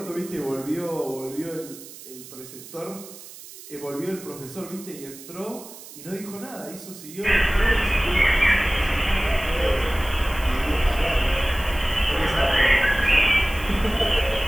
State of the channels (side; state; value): right; noise; hiss, 16 dB below the sound